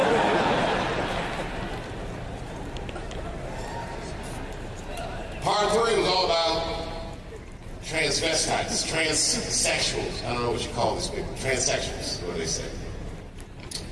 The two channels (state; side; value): identical; both; correlation 1.00